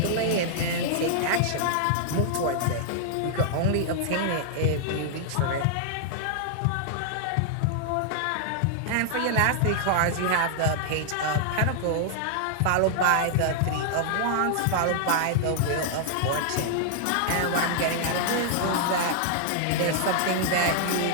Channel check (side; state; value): both; different; correlation -0.01